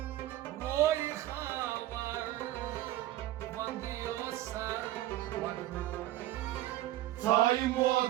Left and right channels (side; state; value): left; quieter; 14.9 dB